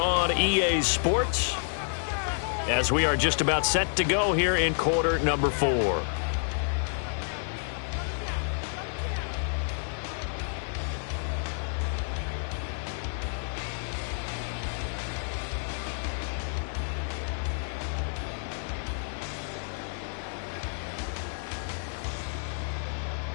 EA Sports as we are just about set to go here in quarter number 4.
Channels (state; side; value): silent; right; digital silence